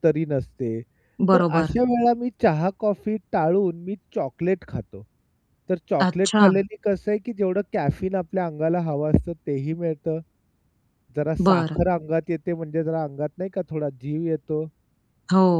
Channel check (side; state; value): both; identical; correlation 1.00